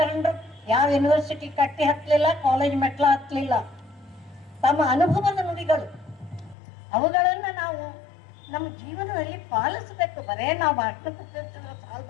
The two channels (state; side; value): drops out; right; at 6.6 s